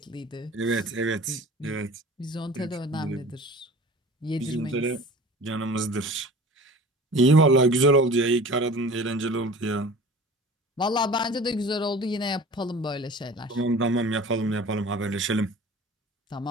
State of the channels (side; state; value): both; normal; correlation 0.41